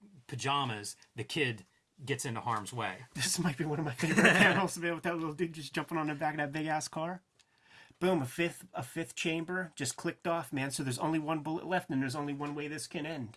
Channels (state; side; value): identical; both; correlation 1.00